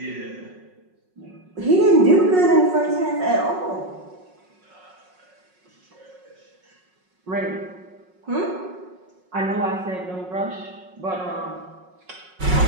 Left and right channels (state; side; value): late; left; 5.4 ms